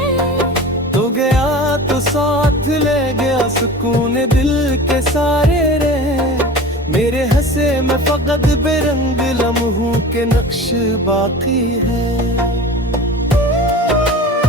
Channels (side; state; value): both; normal; correlation 0.36